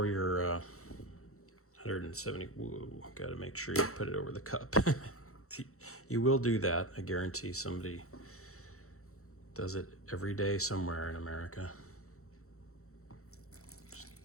your 170, whoa, gotta make sure you put it over the cup. You will do that, I guarantee somebody does it every day somewhere in America. Just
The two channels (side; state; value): right; late; 0.64 ms